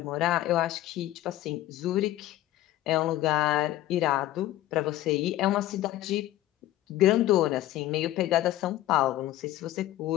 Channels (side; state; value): right; quieter; 14.7 dB